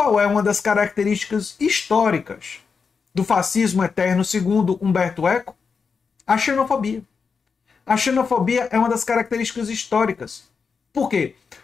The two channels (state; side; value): quieter; right; 5.5 dB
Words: é uma das características históricas do fascismo eterno, segundo Humberto Eco? A xenofobia. A xenofobia é uma das características históricas. Por quê?